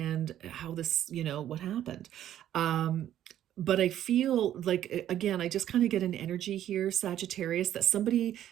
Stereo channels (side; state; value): left; quieter; 11.6 dB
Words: how this, you know, what happened. Um, but I feel like, again, I just kind of get an energy here, Sagittarius, that somebody,